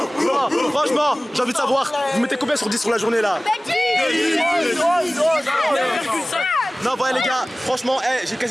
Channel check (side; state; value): both; normal; correlation 0.98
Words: franchement, j'ai envie de savoir, vous mettez combien sur 10 sur la journée là? Non, voilà les gars, franchement, j'ai